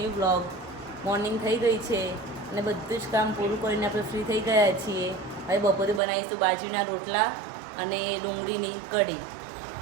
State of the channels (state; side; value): drops out; left; at 6.0 s